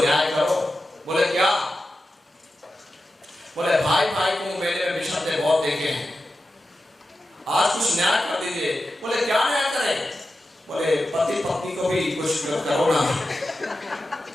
करो। बोले क्या? बोले भाई को मेले में विषम बहुत देखे हैं, आज कुछ न्याय कर दीजिए। बोले क्या न्याय करें? बोले पति पत्नी को भी कुछ करो ना।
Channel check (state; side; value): normal; both; correlation 0.92